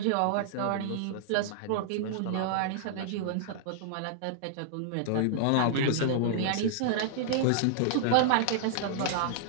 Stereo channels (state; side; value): different; both; correlation -0.01